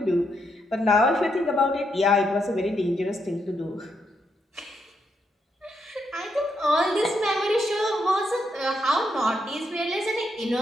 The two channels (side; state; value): both; normal; correlation 0.79